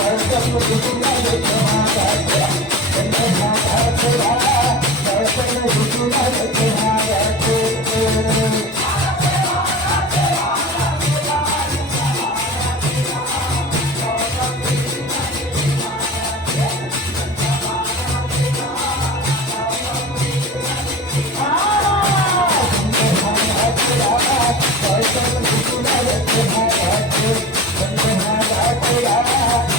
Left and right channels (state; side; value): normal; both; correlation 0.32